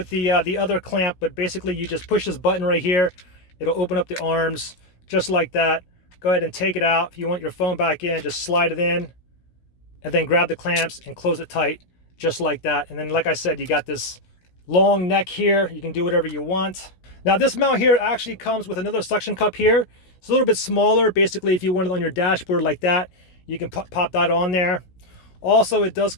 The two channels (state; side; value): late; right; 17 ms